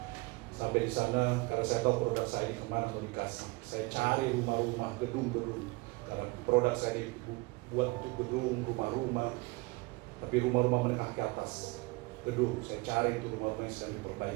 Sampai di sana, karena saya tahu produk saya ini kemana mau dikasih. Saya cari rumah-rumah, gedung-gedung. Karena produk saya ini buat untuk gedung, rumah-rumah. Tapi rumah-rumah menengah ke atas. Gedung, saya cari itu rumah-rumah yang sedang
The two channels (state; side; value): quieter; left; 24.8 dB